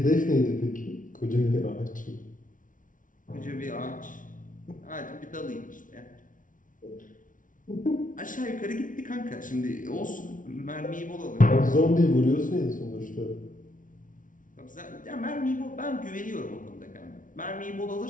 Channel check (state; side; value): late; right; 0.38 ms